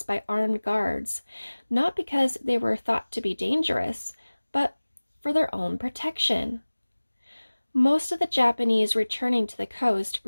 by armed guards, not because they were thought to be dangerous, but for their own protection. Most of the Japanese returning to the coast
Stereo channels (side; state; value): both; inverted; correlation -1.00